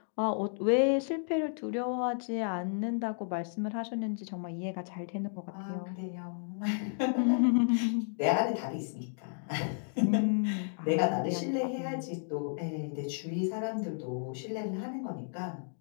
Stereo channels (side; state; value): right; silent; digital silence